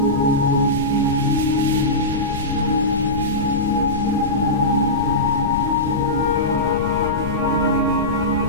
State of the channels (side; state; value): left; noise; rumble, 8 dB below the sound